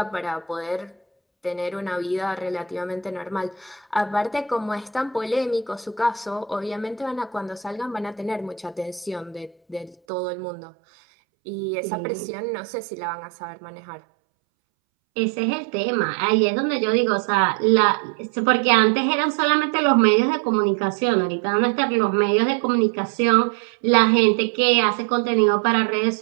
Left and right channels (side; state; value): left; drops out; at 10.0 s